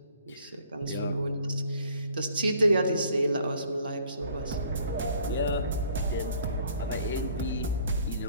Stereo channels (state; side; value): inverted; both; correlation -0.58